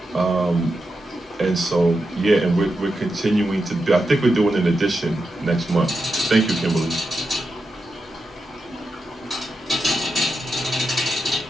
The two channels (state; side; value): normal; both; correlation 0.88